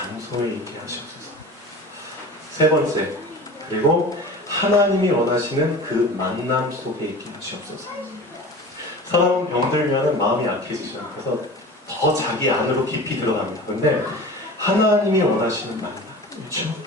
있게 하시옵소서. 세 번째, 그리고 하나님이 원하시는 그 만남 속에 있게 하시옵소서. 사람은 병들면 마음이 약해지죠. 그래서 더 자기 안으로 깊이 들어갑니다. 그런데 하나님이 원하시는 만남, 그렇죠?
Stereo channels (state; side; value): normal; both; correlation 0.37